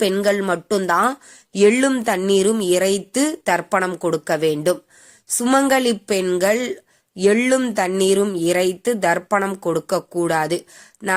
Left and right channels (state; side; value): identical; both; correlation 1.00